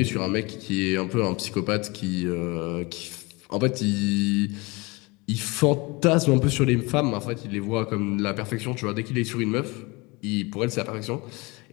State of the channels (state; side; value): quieter; right; 25.5 dB